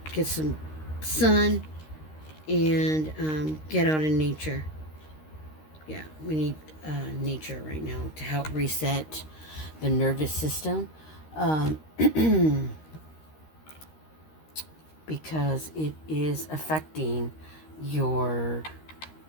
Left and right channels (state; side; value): late; right; 13 ms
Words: get some sun and get out in nature. Yeah, we need nature right now to help reset the nervous system. Because it is affecting your